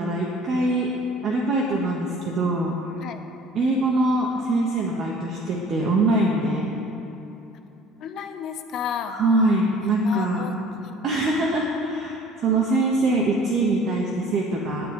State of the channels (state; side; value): normal; both; correlation 0.49